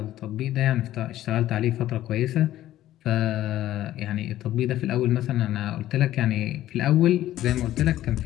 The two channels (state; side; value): quieter; right; 13.7 dB